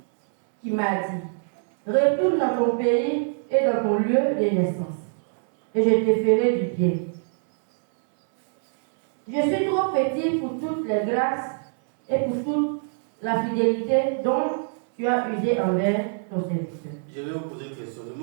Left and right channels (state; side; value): silent; left; 63 dB below the other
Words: qui m'a dit, retourne dans ton pays et dans ton lieu de naissance, et je te ferai du bien. Je suis trop petit pour toutes les grâces et pour toute la fidélité dont tu as usé envers ton serviteur. Je vais vous poser une question. Le